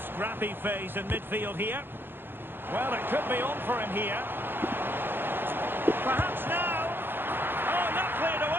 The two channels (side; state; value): left; late; 0.10 ms